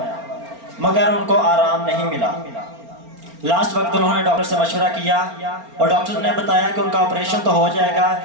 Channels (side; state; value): left; late; 4.4 ms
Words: मगर उनको आराम नहीं मिला। लास्ट वक्त उन्होंने डॉक्टर से मशवरा किया और डॉक्टर ने बताया कि उनका ऑपरेशन तो हो जाएगा